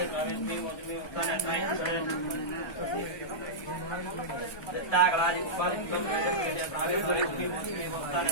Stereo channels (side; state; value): right; late; 1.3 ms